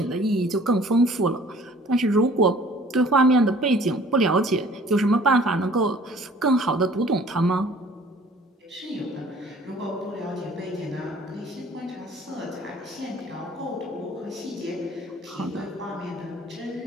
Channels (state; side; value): normal; both; correlation 0.52